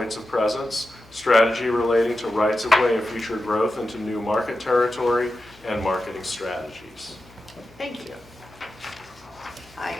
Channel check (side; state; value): left; noise; hum, 26 dB below the sound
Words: of presence, strategy relating to rights of way and future growth into new market territory, and marketing strategies. Thank you. I